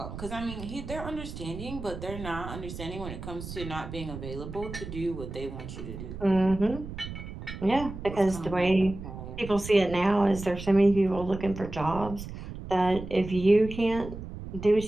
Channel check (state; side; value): noise; right; rumble, 10 dB below the sound